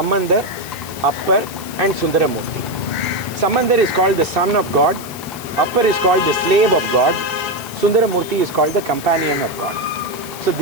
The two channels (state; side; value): noise; left; hiss, 14 dB below the sound